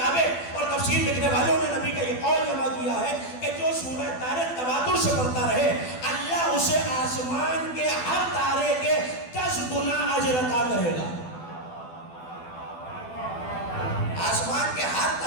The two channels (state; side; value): late; right; 12 ms